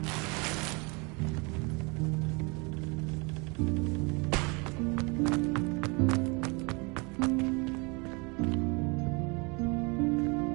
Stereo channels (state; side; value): quieter; left; 29.9 dB